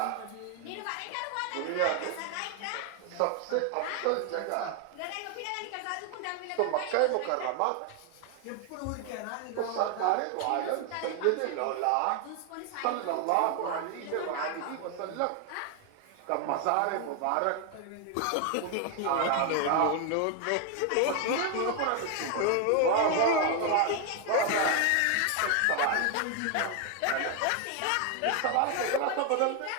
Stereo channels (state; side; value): different; both; correlation 0.01